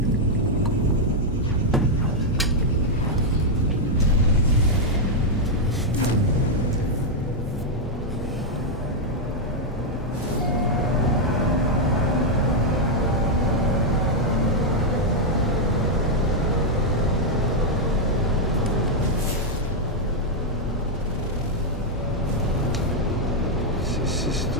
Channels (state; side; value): normal; both; correlation -0.02